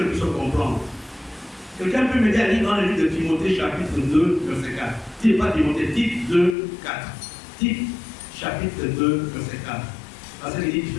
puissions comprendre. Quelqu'un peut m'aider à lire dans le livre de Timothée, chapitre 2, verset 4. Tite pas Timothée, Tite 2, 4. Tite, chapitre 2, verset 4. Parce qu'il dit, tu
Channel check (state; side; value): drops out; right; at 6.6 s